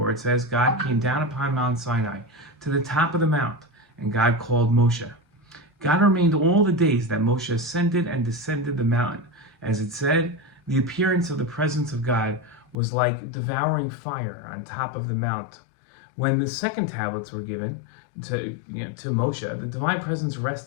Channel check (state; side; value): drops out; right; at 12.8 s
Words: it says, God came down upon Mount Sinai to the top of the mount, and God called Moshe. God remained all the days that Moshe ascended and descended the mountain. As it said, the appearance of the presence of God was like devouring fire on top of the mount. When the second tablets were given to Moshe, the divine presence